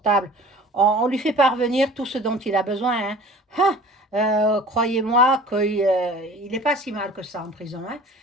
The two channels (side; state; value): both; normal; correlation 0.44